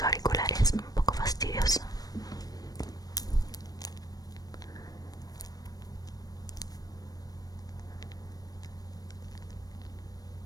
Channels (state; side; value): late; right; 0.18 ms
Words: auriculares, un poco fastidioso.